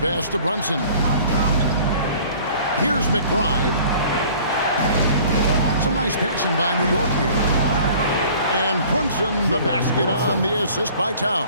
to Brunson. Here's McBride. Some nice passing by New York here. And Brunson, the basket on the assist by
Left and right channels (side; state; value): both; inverted; correlation -0.50